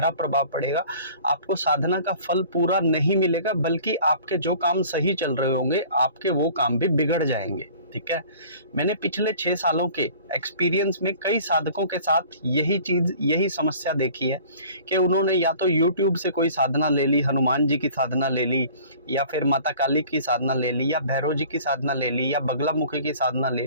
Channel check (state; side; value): inverted; both; correlation -0.48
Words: प्रभाव पड़ेगा। आपको साधना का फल पूरा नहीं मिलेगा, बल्कि आपके जो काम सही चल रहे होंगे आपके वो काम भी बिगड़ जाएंगे। ठीक है, मैंने पिछले 6 सालों के एक्सपीरियंस में कई साधकों के साथ यही समस्या देखी है कि उन्होंने या तो YouTube से कोई साधना ले ली, हनुमान जी की साधना ले ली, या फिर माता काली की साधना ले ली, या भैरव जी की साधना ले ली, या बगला मुखी की साधना ले